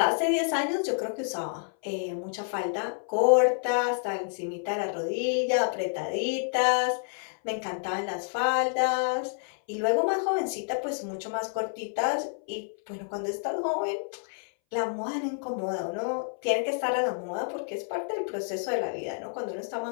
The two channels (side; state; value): right; silent; 59 dB below the other